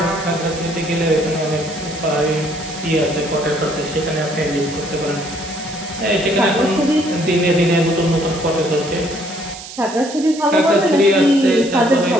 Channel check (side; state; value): right; noise; hiss, 13 dB below the sound